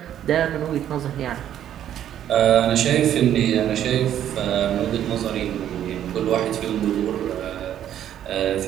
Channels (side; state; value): left; quieter; 10.7 dB